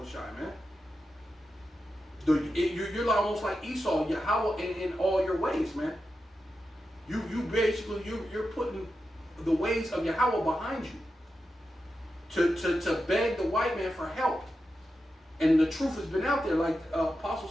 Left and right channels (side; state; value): both; normal; correlation 0.90